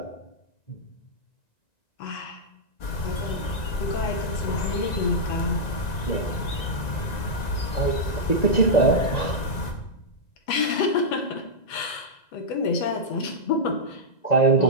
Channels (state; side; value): late; right; 1.9 ms